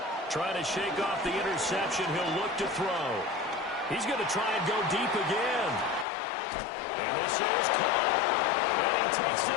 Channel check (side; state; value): right; drops out; at 6.1 s